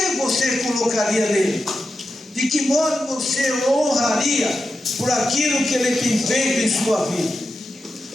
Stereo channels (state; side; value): normal; both; correlation 0.89